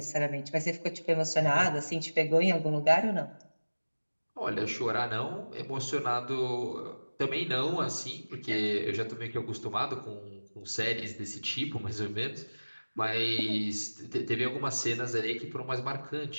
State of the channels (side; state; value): both; inverted; correlation -1.00